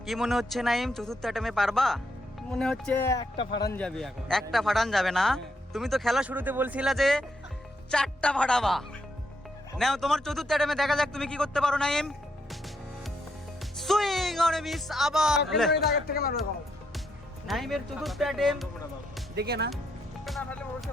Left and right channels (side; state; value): both; normal; correlation 0.77